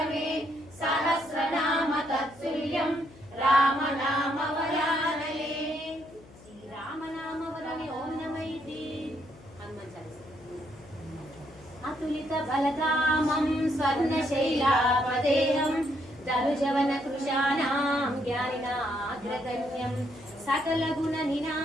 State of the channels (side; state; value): left; noise; hum, 23 dB below the sound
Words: सहस्रनाम तत्तुल्यं राम नाम वरानने श्रीराम नाम वरने ओम नमः इति हनुमान चालीसा अतुलित बलधामं स्वर्णशैलापदेहं दरुजवन कृशानां ज्ञानिनाग्रगण्यं